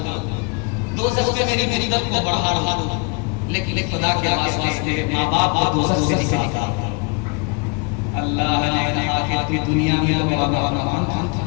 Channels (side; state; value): right; quieter; 32.2 dB